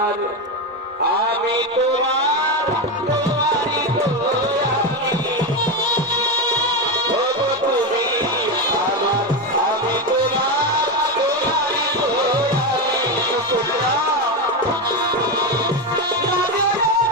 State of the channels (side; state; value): both; normal; correlation 0.13